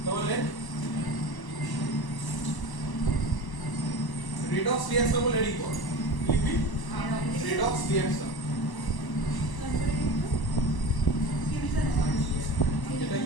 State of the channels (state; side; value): late; right; 1.0 ms